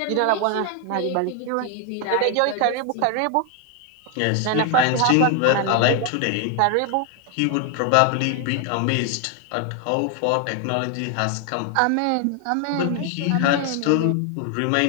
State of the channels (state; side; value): different; both; correlation 0.00